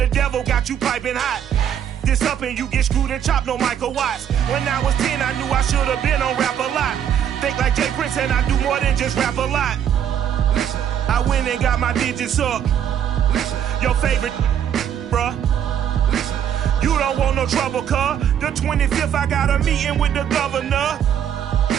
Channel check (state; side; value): quieter; left; 9.2 dB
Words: devil got you piping hot. This up and you get screwed and chopped, no Michael Watts. When I was 10, I knew I should have been on Rap a Lot. Think like Jay Prince and I do more than just rap a lot. I went and got my digits up. Your favorite, bruh. You don't want no trouble, cuz. The 25th, I got a meeting with the governor.